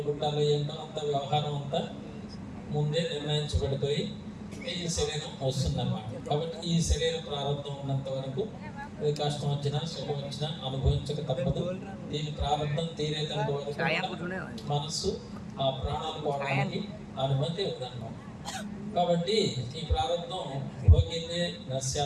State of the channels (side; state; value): both; identical; correlation 1.00